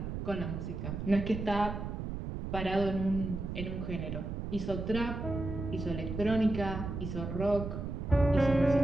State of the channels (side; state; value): right; noise; rumble, 5 dB below the sound